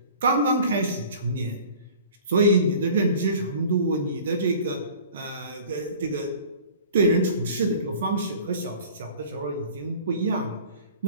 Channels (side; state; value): both; inverted; correlation -0.45